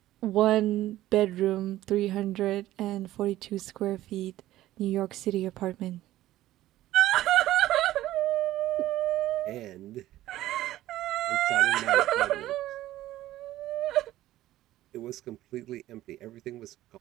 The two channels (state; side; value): quieter; left; 14.8 dB